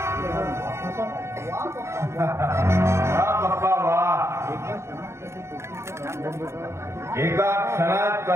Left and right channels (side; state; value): left; late; 0.13 ms